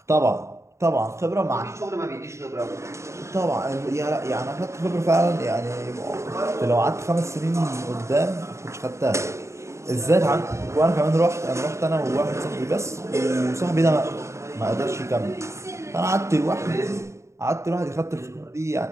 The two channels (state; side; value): late; left; 0.14 ms